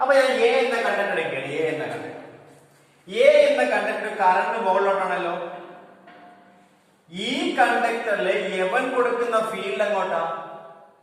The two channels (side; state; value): both; identical; correlation 1.00